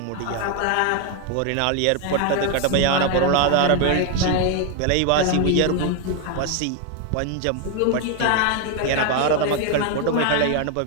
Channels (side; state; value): both; different; correlation 0.01